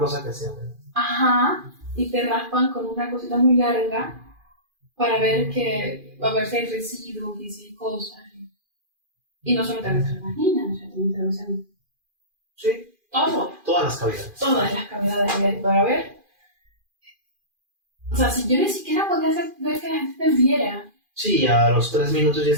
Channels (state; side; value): late; left; 2.4 ms